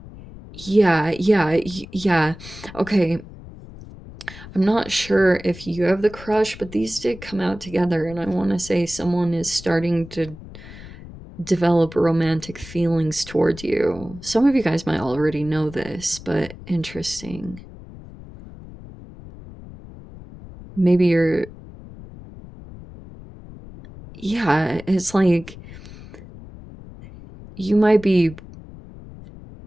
Yeah. Okay. I'm not sure if you have the crush, but these did come out together, and I want to say someone is starting to develop romantic feelings towards you. Some of you guys might already know this, but interesting. Maybe you're, yeah, it's like you might be,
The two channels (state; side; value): noise; left; rumble, 16 dB below the sound